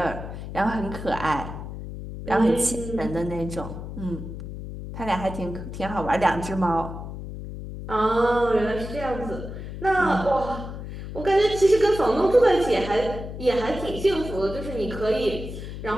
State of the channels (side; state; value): left; noise; hum, 9 dB below the sound